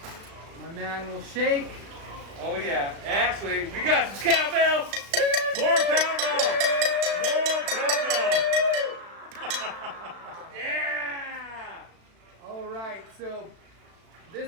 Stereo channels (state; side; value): late; left; 36 ms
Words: My man will shake. Oh yeah. Actually, we got some cowbells. More cowbell! More cowbell! Yeah! All right, so